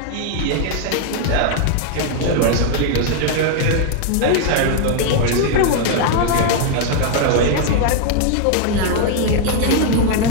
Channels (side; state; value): both; different; correlation 0.00